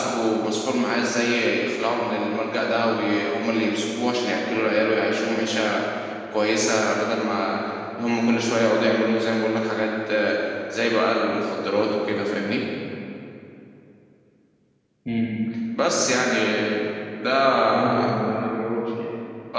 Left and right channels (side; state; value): both; identical; correlation 1.00